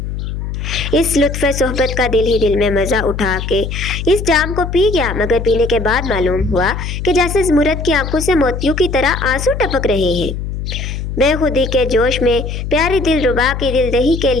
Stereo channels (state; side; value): noise; left; hum, 5 dB below the sound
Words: اس لطف صحبت کا دل ہی دل میں مزہ اٹھا کے اس جام کو پی گیا، مگر پینے کے بعد معلوم ہوا کہ جیسے زمرد کی آنکھوں سے موتیوں کی طرح آنسو ٹپک رہے ہیں۔ بے خودی کے جوش میں پیاری دل ربا کی دل دہی کے